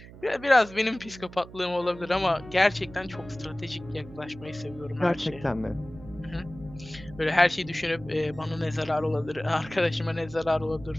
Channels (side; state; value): right; noise; hum, 17 dB below the sound